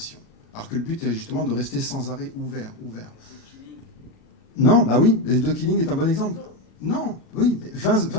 Alors que le but est justement de rester sans arrêt ouvert. Non, bah oui, The Killing est un bon exemple. Non, oui,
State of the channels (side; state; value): right; late; 37 ms